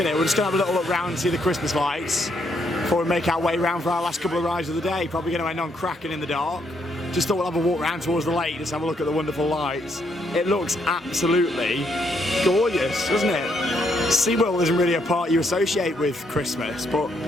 it. We're just going to have a little look round and see the Christmas lights before we make our way round for our last couple of rides of the day. Probably going to end on Kraken in the dark. Just thought we'll have a walk round towards the lake, just have a look at the wonderful lights. It looks absolutely gorgeous, doesn't it? SeaWorld isn't really a park you associate with Christmas, but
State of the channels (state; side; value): normal; both; correlation 0.74